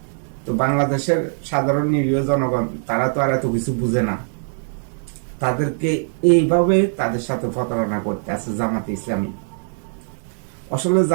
তো বাংলাদেশের সাধারণ নিরীহ জনগণ তারা তো আর এত কিছু বুঝে না, তাদেরকে এইভাবে তাদের সাথে প্রতারণা করতে আছে জামাতে ইসলামী। আসলে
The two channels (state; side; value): silent; left; digital silence